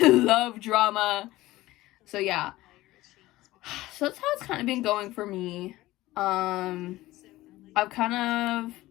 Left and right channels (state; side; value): quieter; right; 17.5 dB